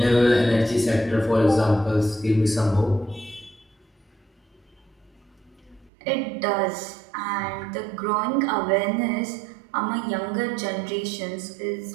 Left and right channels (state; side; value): drops out; left; at 5.9 s